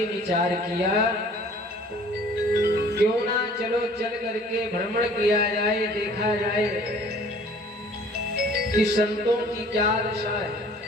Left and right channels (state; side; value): normal; both; correlation 0.52